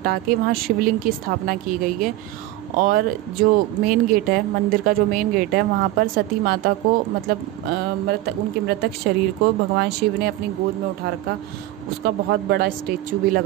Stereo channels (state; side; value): quieter; left; 15.9 dB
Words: के वहाँ शिवलिंग की स्थापना की गई है। और जो मेन गेट है, मंदिर का जो मेन गेट है, वहाँ पर सती माता को मतलब उनके मृतक शरीर को भगवान शिव ने अपनी गोद में उठा रखा, उसका बहुत बड़ा स्टेचू भी